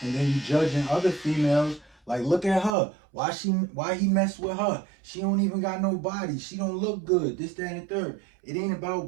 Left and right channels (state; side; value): drops out; left; at 2.8 s